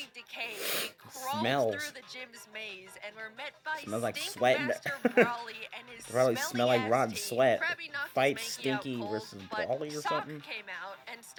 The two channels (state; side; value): identical; both; correlation 1.00